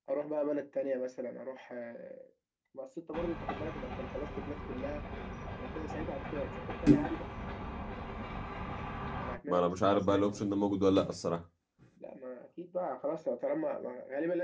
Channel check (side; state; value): both; identical; correlation 1.00